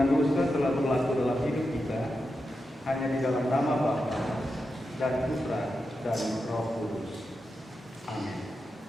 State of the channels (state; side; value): normal; both; correlation 0.88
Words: dosa telah berlaku dalam hidup kita hanya di dalam nama Bapa dan Putra dan Roh Kudus. Amin.